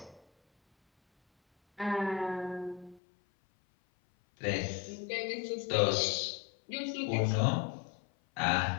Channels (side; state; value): right; drops out; at 3.0 s